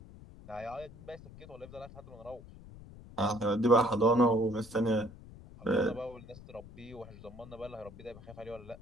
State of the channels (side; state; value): left; noise; rumble, 17 dB below the sound